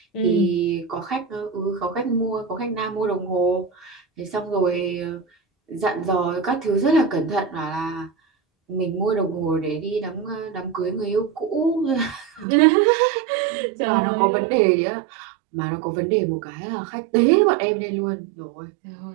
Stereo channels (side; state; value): left; drops out; at 12.5 s